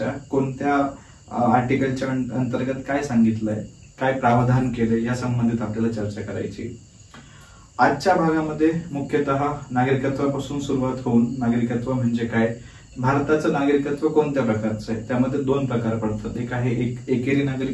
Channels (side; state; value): both; identical; correlation 1.00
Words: कोणत्या आर्टिकलच्या अंतर्गत काय सांगितलंय, काय प्रावधान केले या संबंधित आपल्याला चर्चा करायची. आजच्या भागामध्ये मुख्यतः नागरिकत्वापासून सुरुवात होऊन नागरिकत्व म्हणजे काय, भारताचं नागरिकत्व कोणत्या प्रकारचं आहे, त्यामध्ये दोन प्रकार पडतात. एक आहे एकेरी